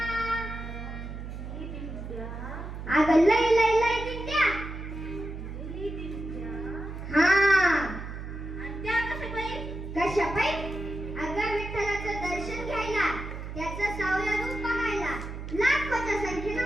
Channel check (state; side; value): noise; right; hum, 8 dB below the sound